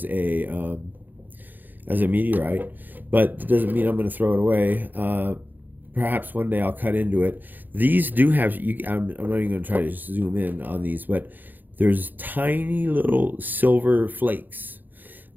as a meteorite. But it doesn't mean I'm going to throw it away. Perhaps one day I'll cut into it. These do have. I'm not even going to try to zoom in on these, but there's tiny little silver flakes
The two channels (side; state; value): left; late; 0.087 ms